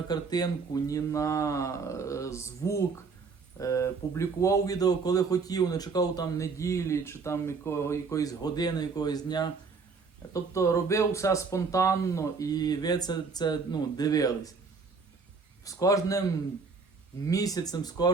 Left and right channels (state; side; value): quieter; left; 4.8 dB